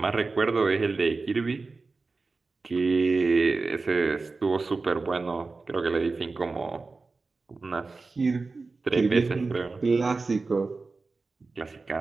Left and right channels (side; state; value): left; quieter; 3.9 dB